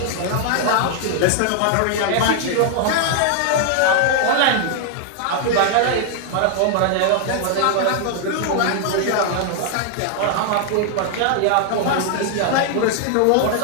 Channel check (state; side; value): different; both; correlation 0.00